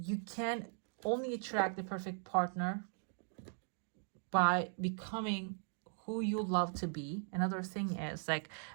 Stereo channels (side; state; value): left; silent; 52 dB below the other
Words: you can only attract the perfect partner by becoming who you love to be. Another thing is like,